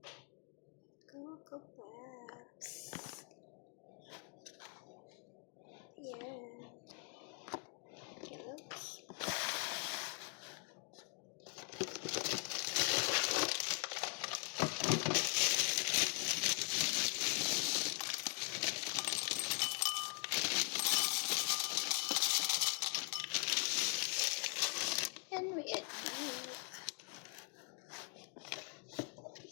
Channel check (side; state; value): right; quieter; 39.3 dB